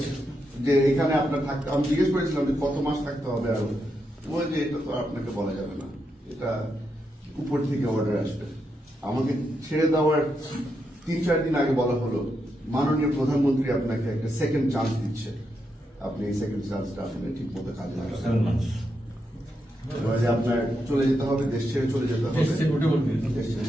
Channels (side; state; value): both; normal; correlation 0.83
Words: যে এখানে আপনার থাকতে আমি জিজ্ঞেস করেছিলাম যে কত মাস থাকতে হবে আরো ওই যে এটা তো আপনাকে বলা যাবে না এটা উপর থেকে অর্ডার আসবে আমাকে ছেড়ে দেওয়ার 3-4 দিন আগে বলা হলো মাননীয় প্রধানমন্ত্রী আপনাকে একটা সেকেন্ড চান্স দিচ্ছে, আপনি এই সেকেন্ড চান্সটা আপনি ঠিক মতো কাজে লাগাবেন। এবারে আপনার চলে যেতে হবে, দেশ ছেড়ে চলে যেতে হবে, দেশ ছেড়ে